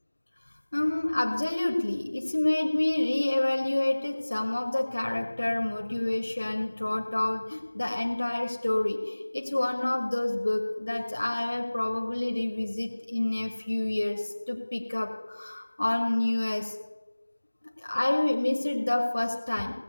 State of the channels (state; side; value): inverted; both; correlation -1.00